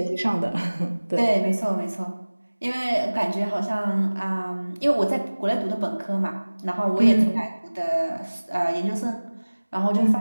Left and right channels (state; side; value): inverted; both; correlation -1.00